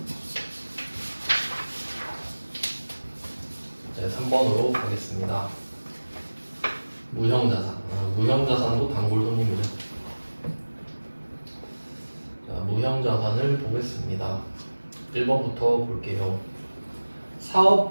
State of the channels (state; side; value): inverted; both; correlation -1.00